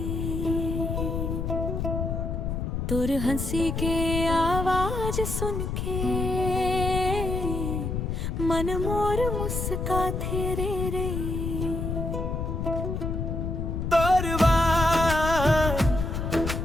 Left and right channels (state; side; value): noise; left; rumble, 2 dB below the sound